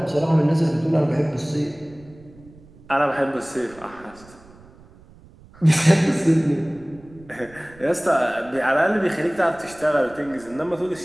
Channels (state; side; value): noise; right; rumble, 23 dB below the sound